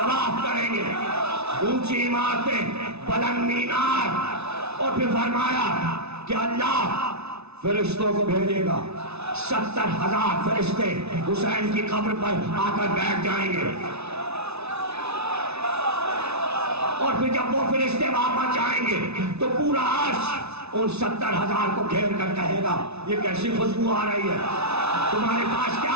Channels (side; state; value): left; late; 0.80 ms